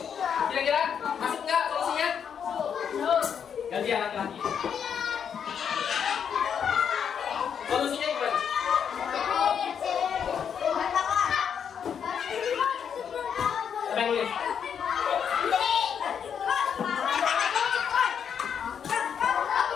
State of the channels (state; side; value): quieter; right; 7.7 dB